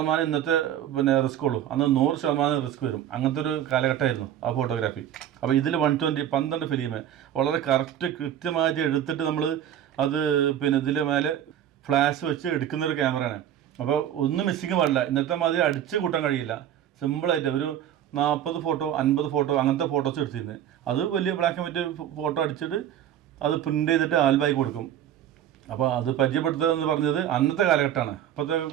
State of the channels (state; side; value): quieter; left; 10.6 dB